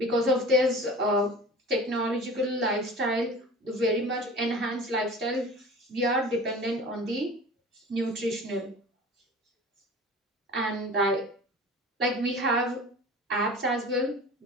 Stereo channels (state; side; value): normal; both; correlation 0.39